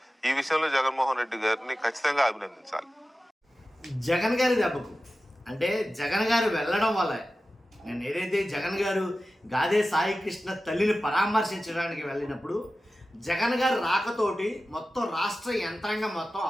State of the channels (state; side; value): normal; both; correlation 0.95